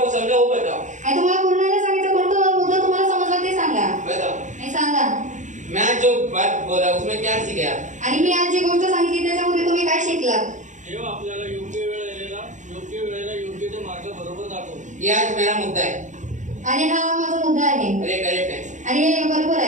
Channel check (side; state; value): left; late; 0.36 ms